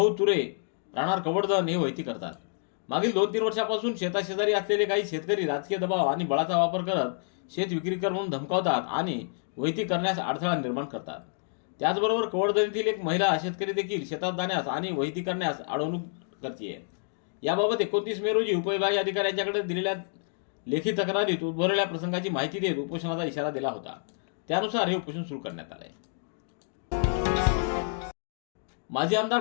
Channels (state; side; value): silent; right; digital silence